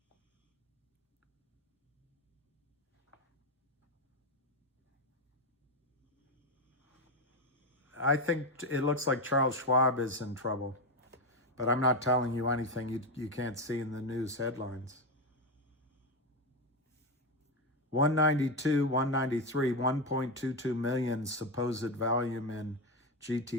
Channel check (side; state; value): both; normal; correlation 0.11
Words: I think it looks like Charles Schwab is in trouble, but I'm not telling you anything you can't see in the news headlines. 192, 193, 1.22 million supposed volume in